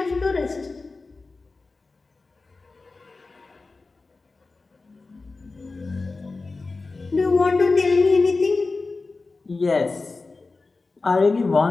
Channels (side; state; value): right; quieter; 3.8 dB